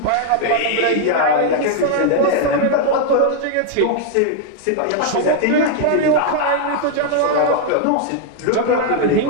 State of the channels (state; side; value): different; both; correlation 0.00